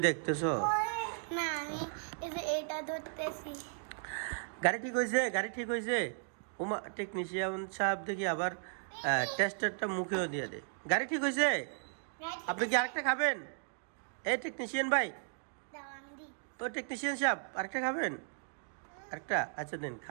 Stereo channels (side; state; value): left; silent; digital silence